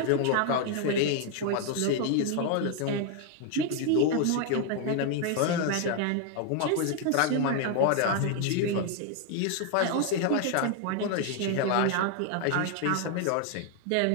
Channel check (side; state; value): both; different; correlation 0.00